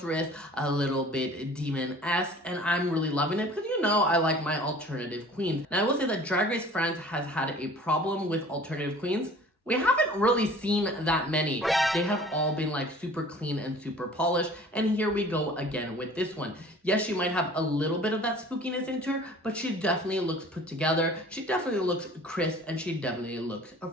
a little bit demon-esque, and I'm really loving it because, you know, I like my alternative queens. Now, I will say that Drag Race France has had a problem with alternative queens. We haven't really seen that many. They have all been like super clean and super polished, and here we go again with this one. Yes, she might have a little bit of that spookiness into her, but she definitely looks put together. She definitely looks crisp, and she definitely looks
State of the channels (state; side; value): normal; both; correlation 0.47